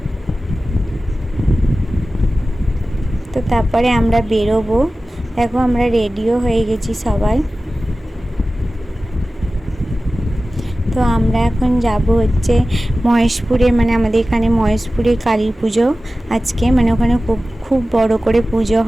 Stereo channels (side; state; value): both; normal; correlation 0.96